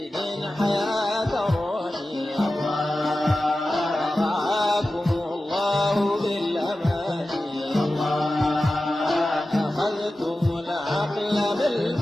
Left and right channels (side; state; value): both; normal; correlation 0.94